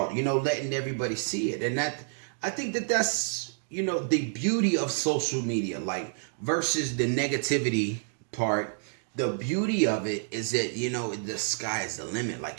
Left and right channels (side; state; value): left; silent; digital silence